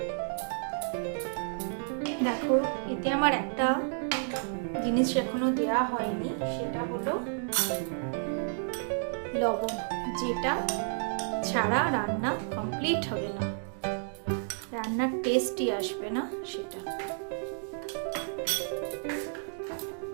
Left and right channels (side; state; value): left; silent; digital silence